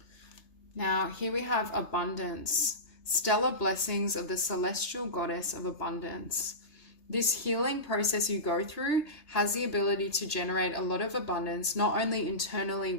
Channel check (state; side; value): late; right; 3.3 ms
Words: Now, here we have abundance, stellar blessings of the celestial goddess of abundance. This healing process you go through has the ability to generate a lot of abundance, not only internally